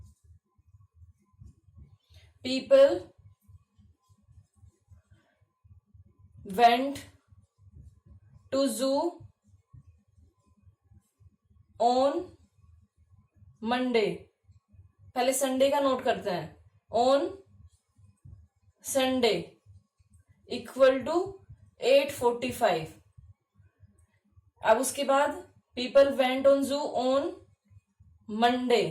people went to zoo on Monday. पहले संडे का नोट करते हैं, ऑन संडे इक्वल टू 845। अब उसके बाद पीपल वेंट ऑन जू ऑन मंडे,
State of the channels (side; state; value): both; identical; correlation 1.00